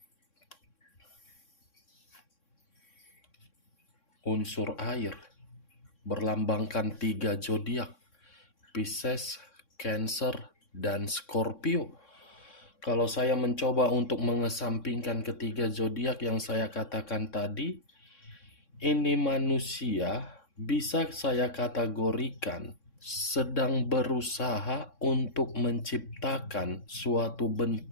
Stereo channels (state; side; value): late; right; 3.6 ms